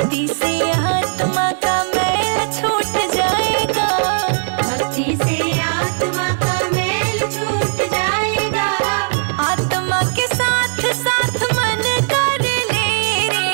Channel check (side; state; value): left; silent; digital silence